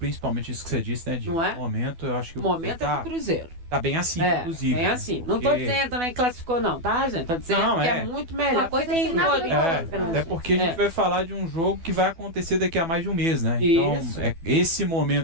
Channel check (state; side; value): late; left; 12 ms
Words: isso que você disse, né? De não é? momento, eu acho que o momento é do Cruzeiro. Tá bem assim, inclusive. Bem assim. Não tô dizendo nem classificou, não, tá, gente? Tô dizendo que é muito melhor. Uma coisa tem nada até porque a gente vai falar de um jogo que vai acontecer daqui a mais de um mês, né? Então, esse